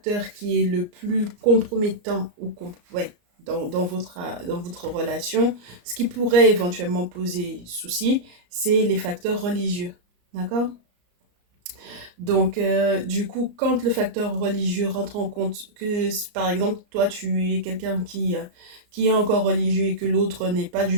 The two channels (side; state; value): left; late; 34 ms